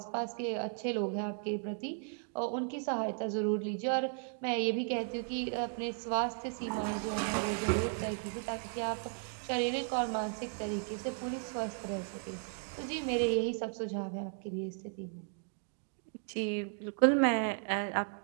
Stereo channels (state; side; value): silent; left; 54 dB below the other